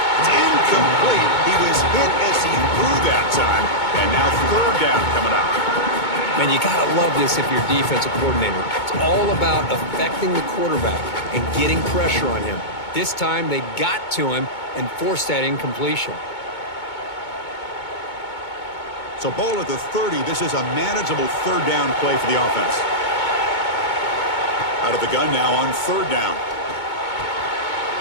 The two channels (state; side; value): late; right; 2.2 ms